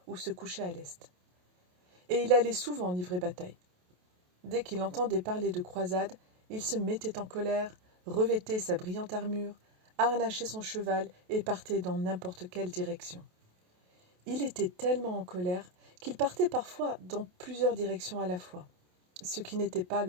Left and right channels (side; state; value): left; late; 28 ms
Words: ou se coucher à l'est. Et il allait souvent livrer bataille. Dès qu'il entendait parler de croisade, il se mettait en colère, revêtait sa brillante armure, harnachait son cheval et partait dans n'importe quelle direction. Il était tellement en colère qu'il partait parfois dans plusieurs directions à la fois, ce qui n'était pas